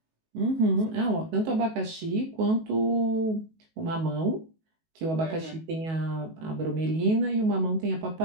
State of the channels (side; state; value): left; late; 19 ms